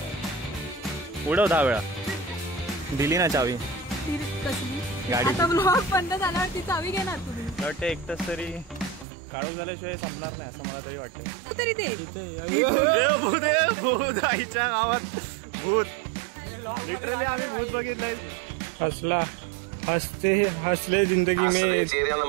10 वेळा. दिली ना चावी गाडी. आता ब्लॉग बंद झाल्यावर ती चावी घेणार तुम्ही. वाटतं एक तास तरी काढूक झाल्याशिवाय संपणार नाही असं मला तरी वाटतंय. तरी ते भूत आईच्या गावात भूत. लिटरली आम्ही भूत बघितलंय. हसला हसले जिंदगी में.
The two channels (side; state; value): left; drops out; at 9.1 s